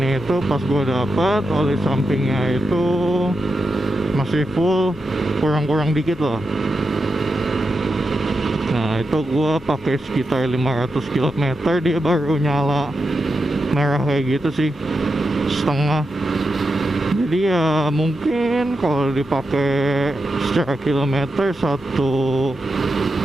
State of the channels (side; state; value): both; normal; correlation 0.87